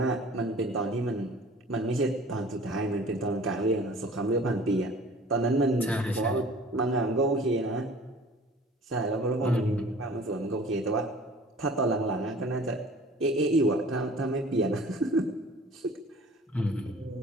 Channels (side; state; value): both; normal; correlation 0.47